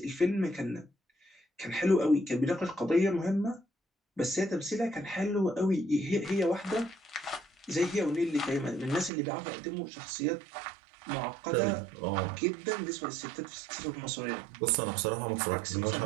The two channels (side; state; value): left; drops out; at 9.1 s